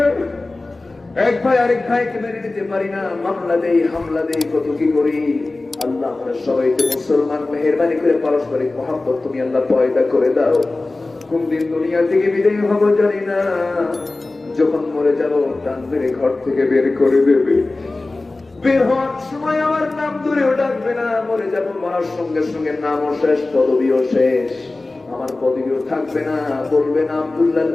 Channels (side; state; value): right; quieter; 3.2 dB